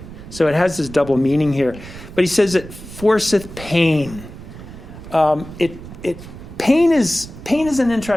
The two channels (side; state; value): right; noise; rumble, 14 dB below the sound